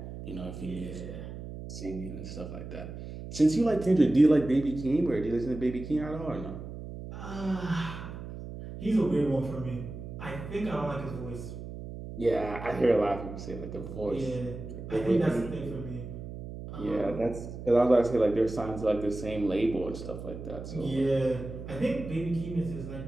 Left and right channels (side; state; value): right; noise; hum, 10 dB below the sound